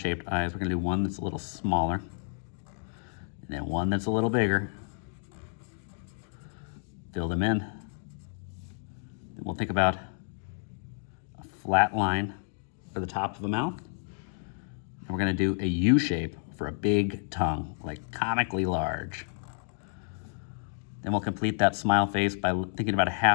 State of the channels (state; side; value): silent; right; digital silence